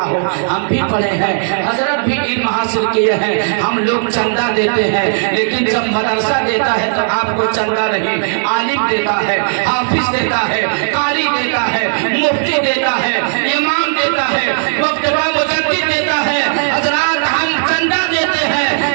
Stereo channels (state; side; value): silent; left; digital silence